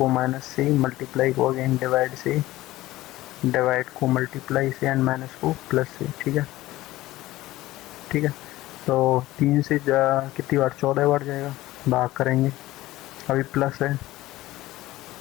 माइनस से, मल्टीप्लाई को अगेन डिवाइड से, डिवाइड को मल्टीप्लाई से, एंड माइनस को प्लस से, ठीक है, ठीक है, तो 3 से कितनी बार, 14 बार जाएगा, भाग करेंगे, अभी प्लस है,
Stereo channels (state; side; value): quieter; right; 17.0 dB